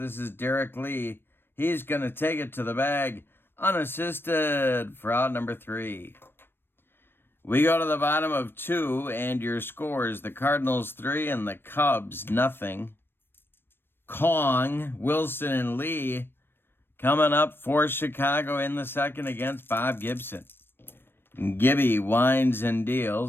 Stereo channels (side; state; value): right; late; 0.10 ms